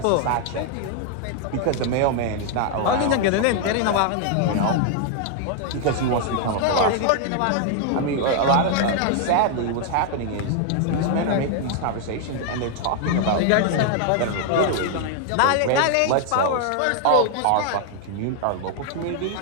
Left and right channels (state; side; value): different; both; correlation 0.00